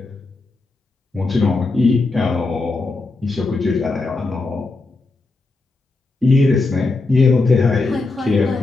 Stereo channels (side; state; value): right; quieter; 3.4 dB